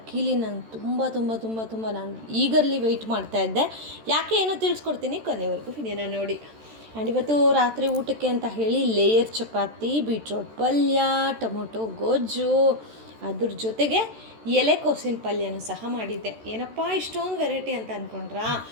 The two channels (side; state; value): left; late; 13 ms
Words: ನಂಗೆ ತುಂಬ ನಾನು ಈಗರ್ಲಿ ವೆಯ್ಟ್ ಮಾಡ್ತಾಯಿದ್ದೆ. ಯಾಕೆ ಏನೋ ತಿಳಿಸ್ಕೊಡ್ತೀನಿ, ಕೊನೆವರೆಗೂ ವಿಡಿಯೋನ ನೋಡಿ. ಆ್ಯಂಡ್ ಇವತ್ತು ರಾತ್ರಿ ಊಟಕ್ಕೆ ಅಂತ ಹೇಳಿ ಲೇಯರ್ ಚಪಾತಿ, ಬೀಟ್ರೋಟ್ ಪಲ್ಯ, ಟೊಮೊಟೊ ಗೊಜ್ಜು, ಅದ್ರ ಜೊತೆಗೆ ಎಲೆಕೋಸಿನ ಪಲ್ಯನೂ ಸಹ ಮಾಡಿದ್ದೆ. ಏನಪ್ಪ ಇಷ್ಟೊಂದು ವೆರೈಟಿ ಅಂತ ಅಂದ್ಕೊಂಡ್ರಾ?